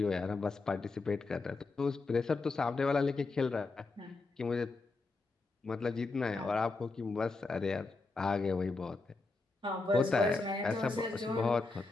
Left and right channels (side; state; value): right; quieter; 3.6 dB